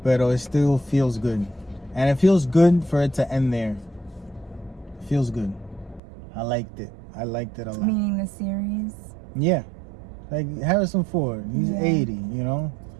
but it still feels good. And it feels good for it to end there. It feels good. I liked it. I liked it a lot. Meaning the series? Yeah. Like Harrison Ford, he's 80, you know?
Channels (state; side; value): drops out; left; at 6.0 s